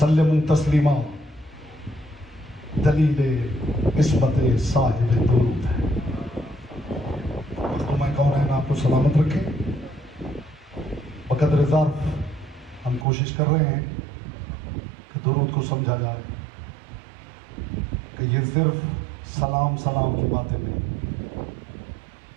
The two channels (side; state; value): left; drops out; at 13.1 s